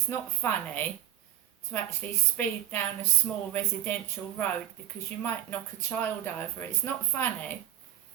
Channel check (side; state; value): left; quieter; 11.9 dB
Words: not funny to actually speed down a small residential road because you might knock a child over. It's not funny.